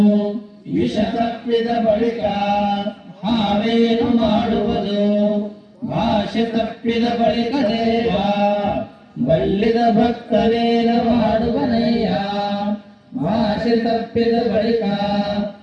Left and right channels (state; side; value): identical; both; correlation 1.00